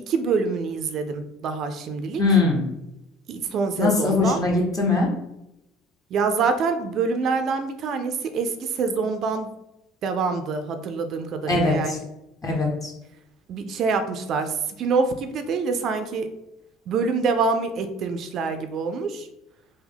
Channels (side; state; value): both; normal; correlation 0.49